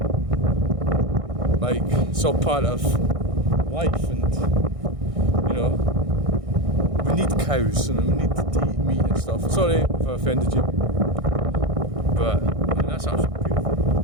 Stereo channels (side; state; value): left; late; 1.6 ms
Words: like, it's all part of life, and you know, we need cows and we need to eat meat and stuff. Sorry if I offended you, but I mean, that's absolutely